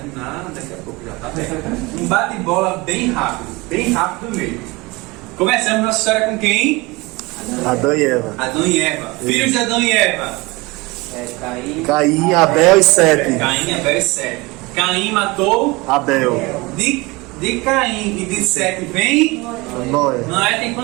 daqui a pouco, já tá bem. Um bate-bola bem rápido mesmo. Começamos nossa história com quem? Adão e Eva. Adão e Eva. Filhos de Adão e Eva. Caim, Abel e Sete. Caim, Abel e Sete. Caim matou Abel. de Caim e de Sete vem. Noé. Noé tem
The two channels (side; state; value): left; quieter; 23.6 dB